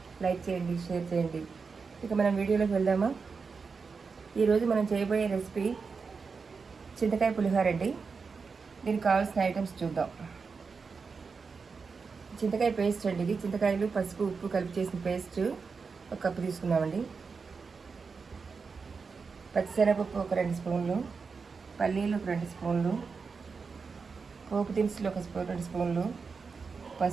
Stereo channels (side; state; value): left; quieter; 5.0 dB